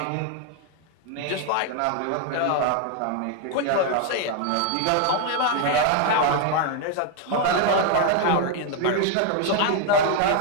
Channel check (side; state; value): both; different; correlation 0.01